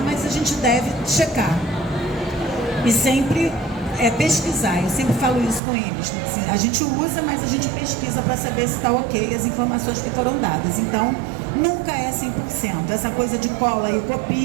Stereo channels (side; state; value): left; drops out; at 5.6 s